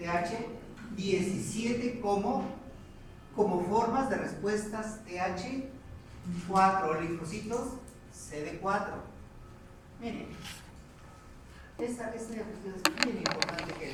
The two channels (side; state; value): both; identical; correlation 1.00